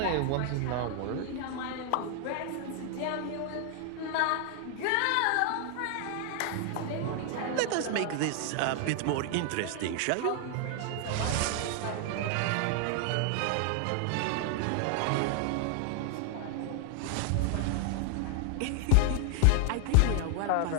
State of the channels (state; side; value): different; both; correlation 0.00